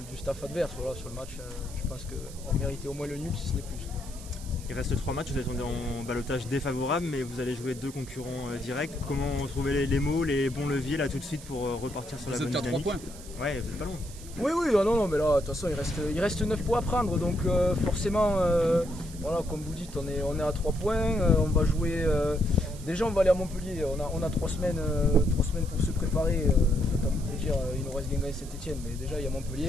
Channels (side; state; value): right; noise; hiss, 17 dB below the sound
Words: staff adverse, voilà, sur le match, je pense qu'on méritait au moins le nul, si ce n'est plus. Il reste 3 matchs, vous êtes en ballottage défavorable, mais vous allez jouer 2 concurrents directs. Comment trouver les mots, les bons leviers là tout de suite pour repartir sur la bonne dynamique? Vous êtes qu'à 3 points. Ouais, vous êtes pas loin. Oui, non, mais là, de toute façon, il reste 9 points à prendre, donc forcément, voilà, comme vous dites, on est à 3 points, on va jouer, déjà on va aller à Montpellier, on a 3 semaines pour se préparer, je vais pas vous dire, il nous reste Guingamp et Saint-Etienne, mais déjà il y a